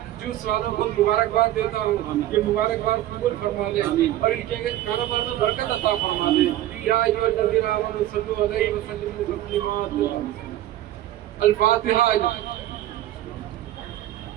जूस वालों को मुबारकबाद देता हूँ। ये मुबारकबाद कबूल फरमा दे और इनके कारोबार में बरकत अता फरमा दे। या अय्युहल्लज़ीना आमनू सल्लू अलैहि व सल्लिमू तस्लीमा। अल-फातिहा।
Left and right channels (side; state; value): left; quieter; 13.8 dB